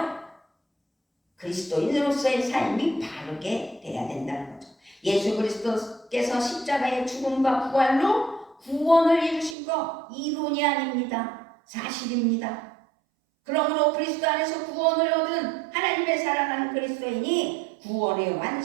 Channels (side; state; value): left; drops out; at 9.6 s